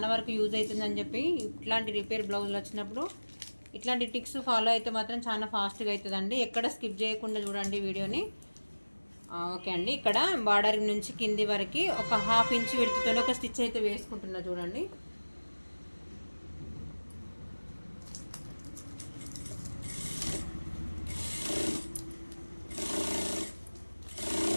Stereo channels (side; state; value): both; inverted; correlation -1.00